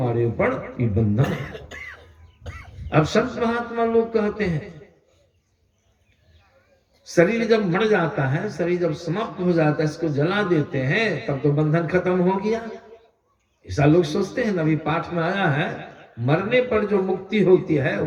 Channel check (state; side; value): identical; both; correlation 1.00